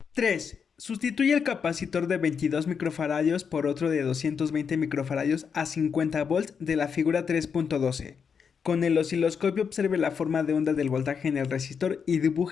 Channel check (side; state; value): right; quieter; 6.5 dB